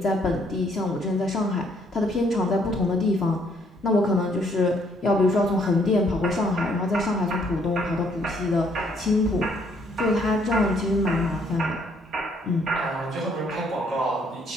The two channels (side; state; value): both; normal; correlation 0.67